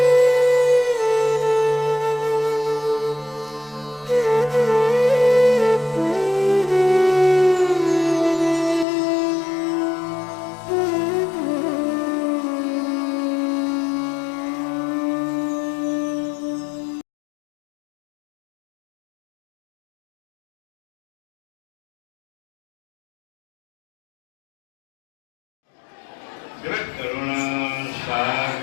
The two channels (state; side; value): drops out; right; at 8.8 s